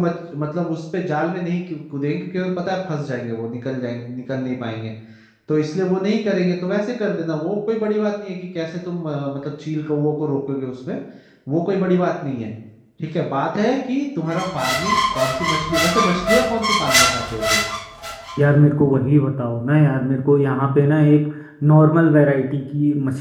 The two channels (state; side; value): identical; both; correlation 1.00